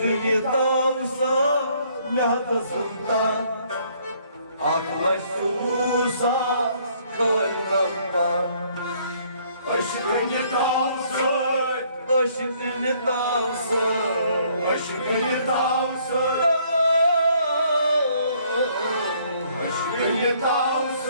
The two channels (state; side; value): inverted; both; correlation -0.64